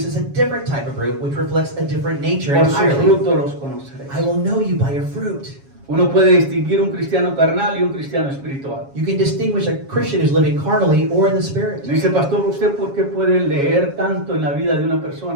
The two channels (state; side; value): late; left; 7.3 ms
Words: a different type of fruit, which reflects a different nature Por su entirely. fruto los conoceréis. I will know you by your fruit. Uno puede distinguir un cristiano carnal y un cristiano espiritual. You can distinguish a Christian who's living carnally or in the Spirit. Dice, pastor, ¿usted por qué puede leer tanto en la vida de una